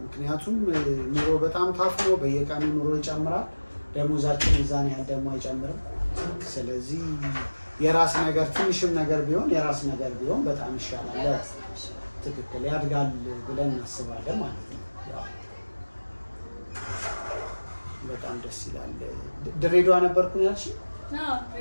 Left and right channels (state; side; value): inverted; both; correlation -1.00